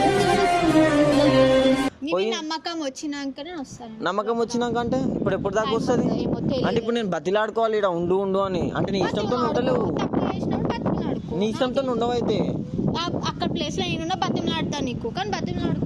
నమ్మకం వచ్చినాకనే వస్తాను నమ్మకం వచ్చినాక అంటే ఇప్పుడు ఎప్పుడు దాకా వస్తుంది ఏమో తెలియదు. అంటే ఇప్పుడు నేను బతిలాడుకోవాలి ఇక్కడ ఉండు ఉండు అని అంటే నీ ఇష్టంతో ఉండలేవు తప్పు చేసినప్పుడు బతిమలాడుకో నీ ఇష్టంతో ఉండవు అయితే అక్కడ ప్లేస్ లో నేనున్నా బతిమలాడతా నీకు కానీ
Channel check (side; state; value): both; identical; correlation 1.00